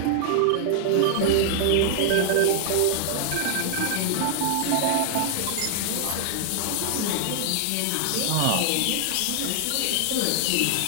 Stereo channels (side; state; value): both; different; correlation -0.01